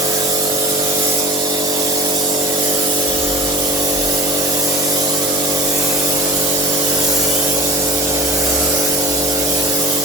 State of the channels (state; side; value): normal; both; correlation 0.39